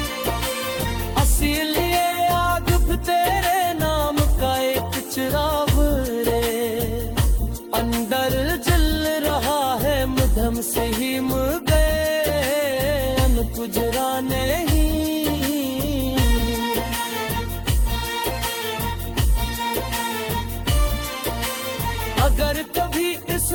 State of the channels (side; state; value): both; identical; correlation 1.00